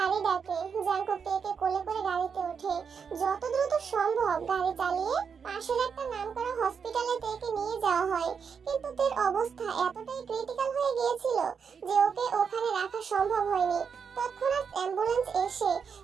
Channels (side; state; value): left; quieter; 6.4 dB